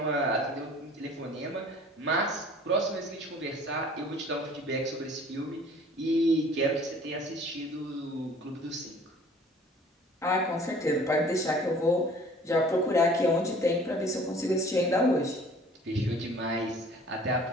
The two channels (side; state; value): both; normal; correlation 0.51